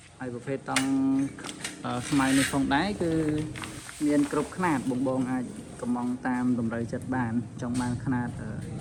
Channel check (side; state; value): both; identical; correlation 1.00